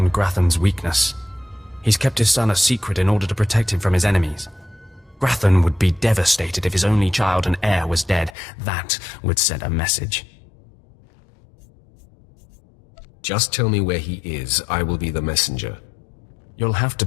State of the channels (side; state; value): right; drops out; at 8.3 s